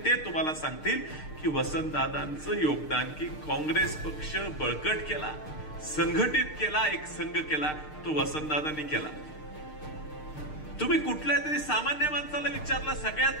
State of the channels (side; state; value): right; late; 6.6 ms